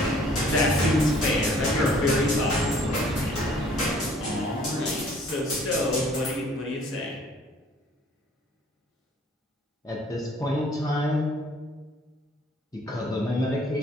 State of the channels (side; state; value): both; normal; correlation 0.57